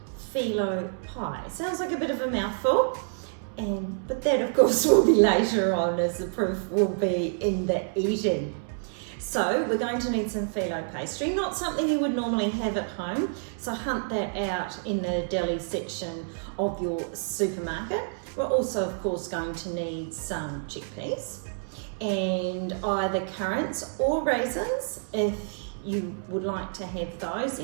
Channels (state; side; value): silent; left; digital silence